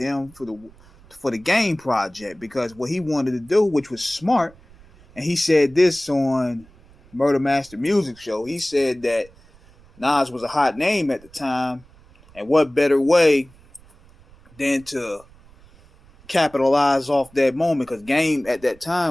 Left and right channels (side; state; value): right; noise; rumble, 26 dB below the sound